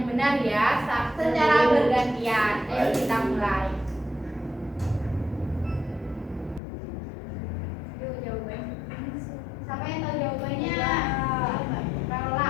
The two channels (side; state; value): right; drops out; at 6.6 s